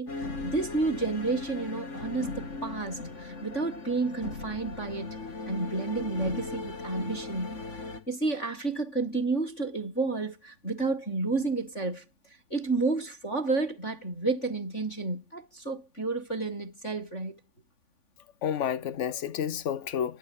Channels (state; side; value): late; right; 3.5 ms